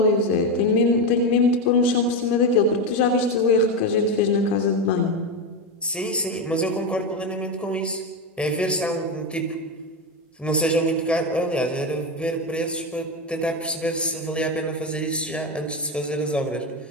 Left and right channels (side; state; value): both; normal; correlation 0.13